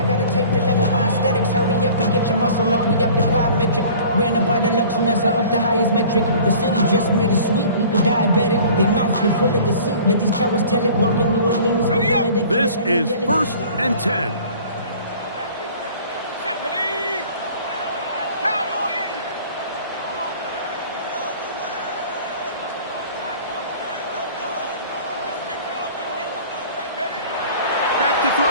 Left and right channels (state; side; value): inverted; both; correlation -0.47